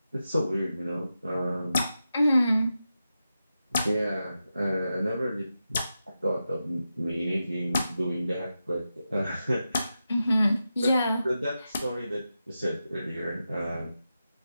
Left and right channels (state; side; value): inverted; both; correlation -0.90